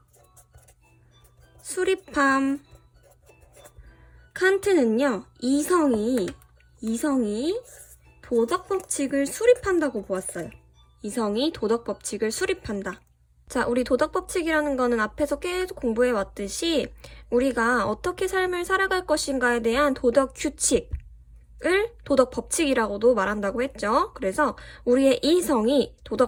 수립함. 칸트는요, 이성이 도덕 법칙을 수립한다고 보았어요. 이성이 도덕 법칙을 수립한다. 자, 우리 도덕 법칙이라는 거는 앞에서 계속 공부해 왔듯이 우리가 어떻게 삶을 살아갈 것인가에 대한 도덕 규칙을 도덕 법칙이라고도 말한다고 했죠. 그래서 우리의 이성이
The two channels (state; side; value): identical; both; correlation 1.00